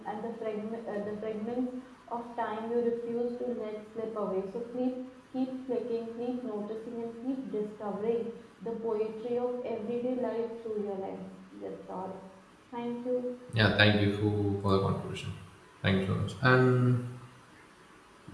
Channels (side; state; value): both; identical; correlation 1.00